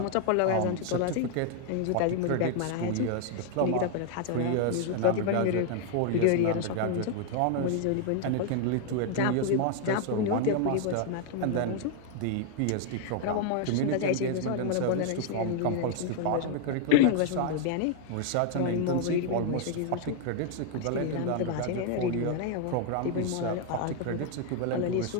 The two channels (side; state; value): both; different; correlation 0.00